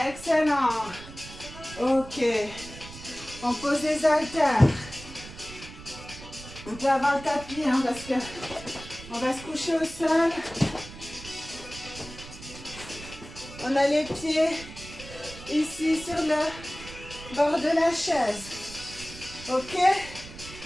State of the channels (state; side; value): noise; right; rumble, 15 dB below the sound